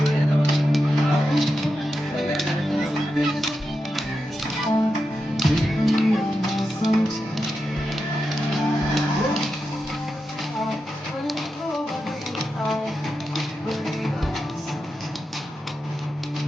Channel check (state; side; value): normal; both; correlation 0.89